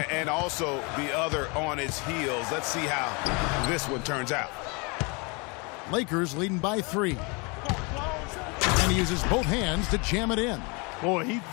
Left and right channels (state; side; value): quieter; right; 30.1 dB